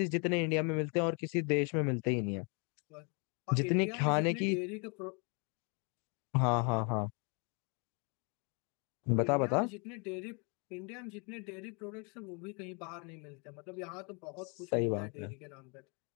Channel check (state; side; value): quieter; right; 36.1 dB